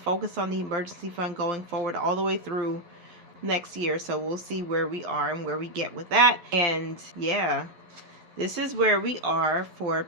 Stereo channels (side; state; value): left; late; 11 ms